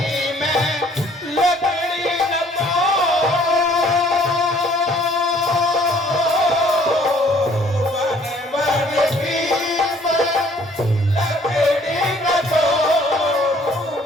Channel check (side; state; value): both; normal; correlation 0.58